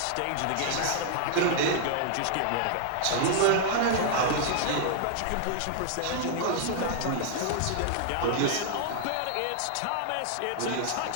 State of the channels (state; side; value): different; both; correlation -0.01